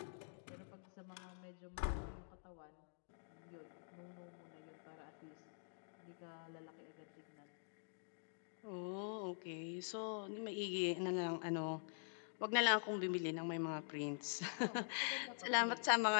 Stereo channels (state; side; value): silent; right; digital silence